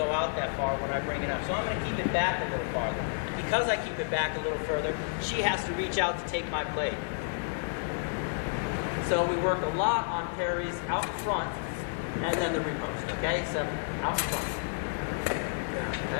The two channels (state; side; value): silent; right; 57 dB below the other